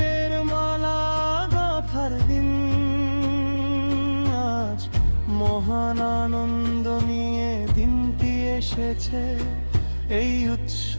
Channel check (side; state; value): both; inverted; correlation -1.00